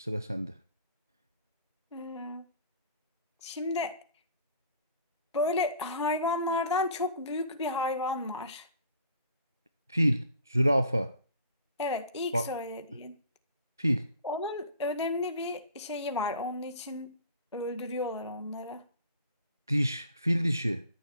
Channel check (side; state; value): both; inverted; correlation -0.49